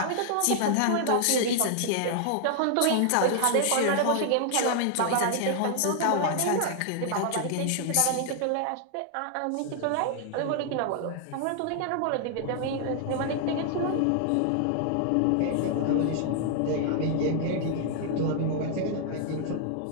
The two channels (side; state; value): both; different; correlation 0.00